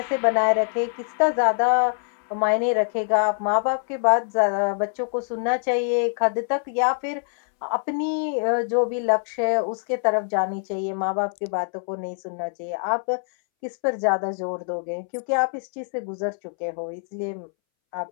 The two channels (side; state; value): right; silent; 62 dB below the other